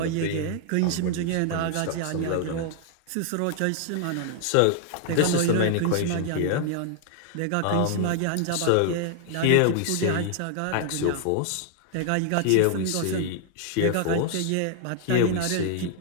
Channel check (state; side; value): different; both; correlation 0.00